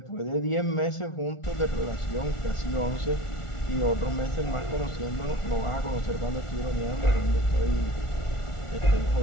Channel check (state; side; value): late; right; 1.4 ms